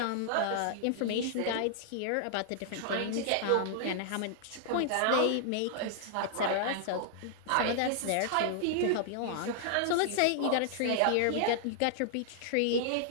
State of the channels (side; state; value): both; different; correlation -0.01